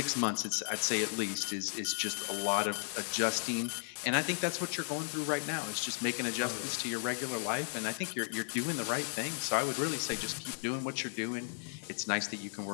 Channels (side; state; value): right; silent; digital silence